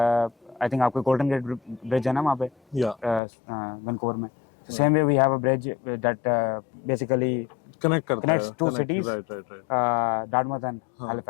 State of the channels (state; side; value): drops out; right; at 3.2 s